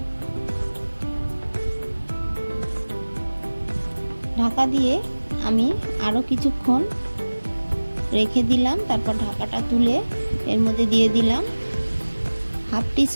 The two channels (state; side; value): inverted; both; correlation -1.00